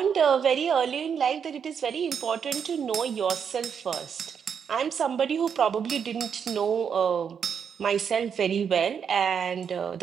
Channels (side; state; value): left; quieter; 7.2 dB